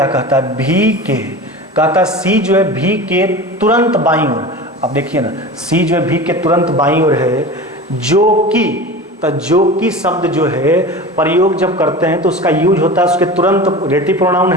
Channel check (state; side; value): normal; both; correlation 0.32